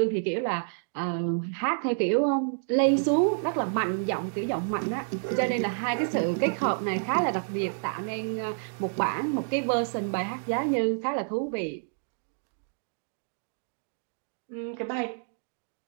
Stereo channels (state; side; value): silent; left; digital silence